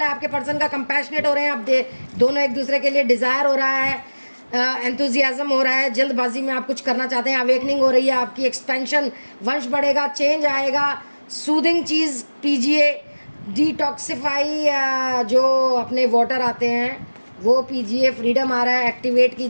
है आपके पर्सन का, कंपैशनेट हो रहे हैं आप दोनों एक दूसरे के लिए, डिज़ायर हो रहा है, एंथुजियाज्म हो रहा है, जल्दबाजी में आप कुछ करना चाहते हैं, अवेकनिंग हो रही है आपकी, एक्सपेंशन, वंश बढ़ेगा, चेंज आएगा। सूदिंग चीज़ पीजिए, डिटॉक्सिफाई जो अपने वाटर आते हैं वो पीजिए, फ्रीडम आ रहा है, एक्टिवेट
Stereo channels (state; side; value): inverted; both; correlation -1.00